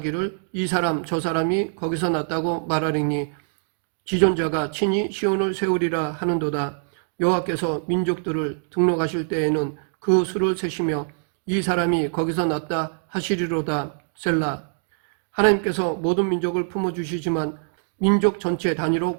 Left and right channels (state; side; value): silent; left; digital silence